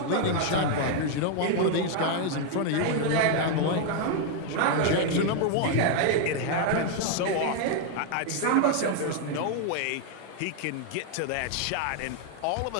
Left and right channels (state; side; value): different; both; correlation 0.00